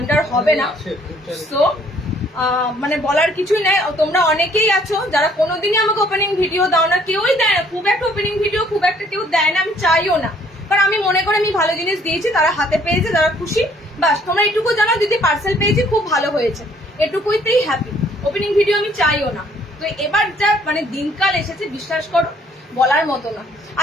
হবে না। সো মানে বলার কিছুই নাই। তোমরা অনেকেই আছো যারা কোনোদিনই আমাকে ওপেনিং ভিডিও দাও না, কেউই দেয় না, খুব একটা ওপেনিং ভিডিও খুব একটা কেউ দেয় না, আমি চাইও না, কারণ আমি মনে করি আমি ভালো জিনিস দিয়েছি, তারা হাতে পেয়েছে, তারা খুশি, বাস। তোমরা এটুকু জানো দিদি পার্সেল পেয়েছি, খুব ভালো হয়েছে, এটুকুইতেই হ্যাপি। ওপেনিং ভিডিও আমি চাইও না। তো এবার যা মানে দিনকাল এসেছে, বিশ্বাস করো বলার মতো না।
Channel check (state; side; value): normal; both; correlation 0.62